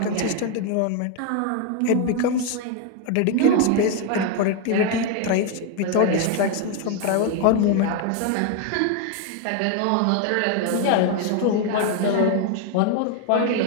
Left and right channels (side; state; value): both; different; correlation 0.01